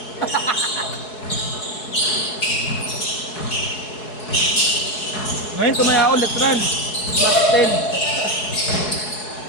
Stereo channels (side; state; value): right; late; 4.7 ms